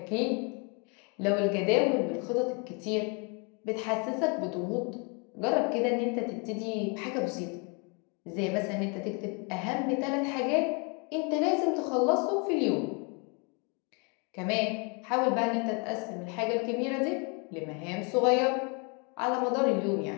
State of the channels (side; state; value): right; quieter; 34.1 dB